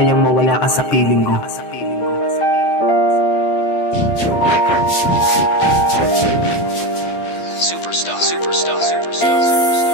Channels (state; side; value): late; right; 12 ms